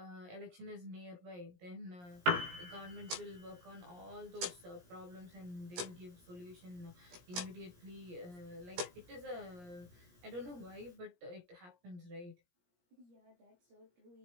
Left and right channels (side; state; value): left; late; 17 ms